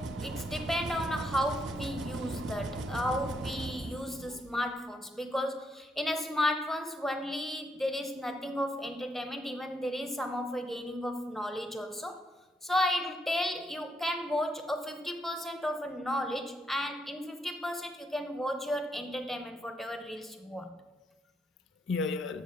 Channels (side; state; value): both; normal; correlation 0.76